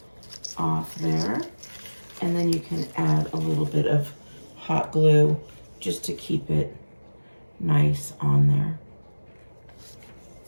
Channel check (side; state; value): both; inverted; correlation -1.00